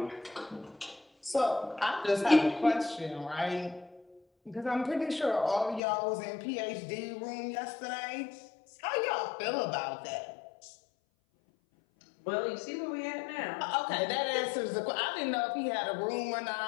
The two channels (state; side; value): drops out; right; at 5.8 s